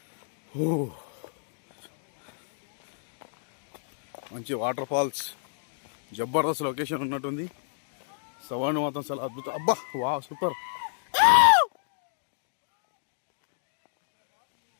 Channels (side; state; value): right; silent; digital silence